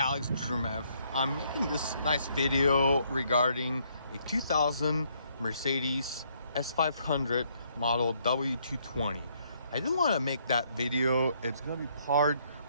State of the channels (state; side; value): inverted; both; correlation -0.70